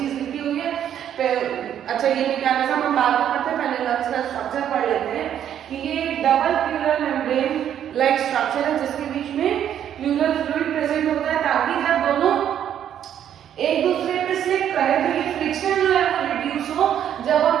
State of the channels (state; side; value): quieter; left; 10.0 dB